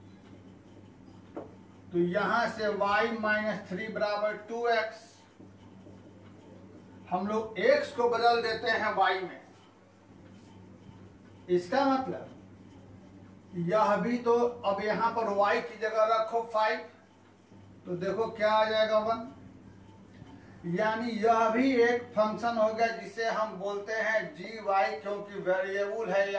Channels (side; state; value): both; identical; correlation 1.00